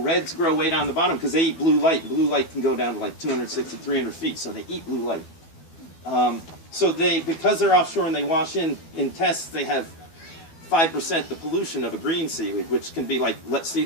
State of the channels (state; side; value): late; right; 12 ms